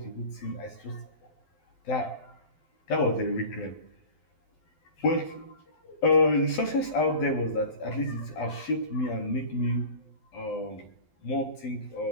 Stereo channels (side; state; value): right; late; 12 ms